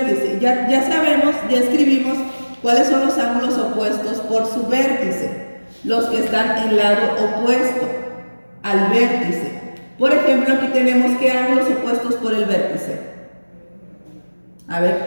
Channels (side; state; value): both; inverted; correlation -1.00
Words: Ya sabemos, ya escribimos cuáles son los ángulos opuestos por su vértice. Los que están en lado opuesto al vértice. Por ejemplo, aquí tenemos qué ángulos opuestos por el vértice. A